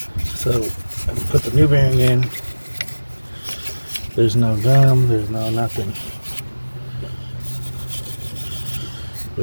So I can put the new bearing in. There's no gum, there's no nothing.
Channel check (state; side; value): inverted; both; correlation -1.00